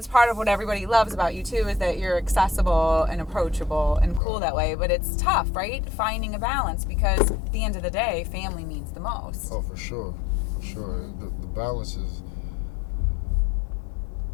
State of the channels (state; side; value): drops out; right; at 4.2 s